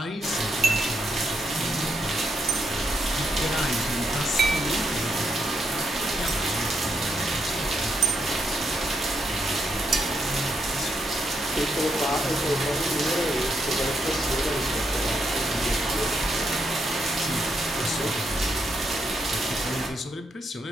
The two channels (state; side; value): normal; both; correlation 0.79